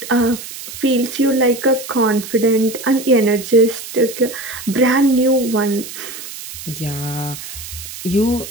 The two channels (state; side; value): noise; right; hiss, 11 dB below the sound